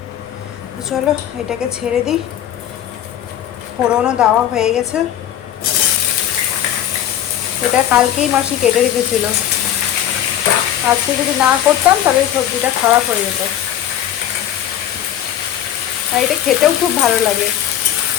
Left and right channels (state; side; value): quieter; right; 11.2 dB